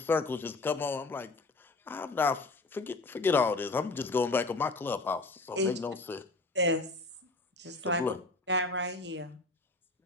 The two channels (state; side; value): quieter; right; 3.1 dB